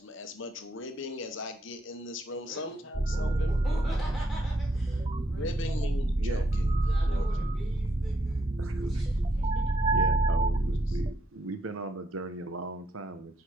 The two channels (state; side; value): normal; both; correlation 0.75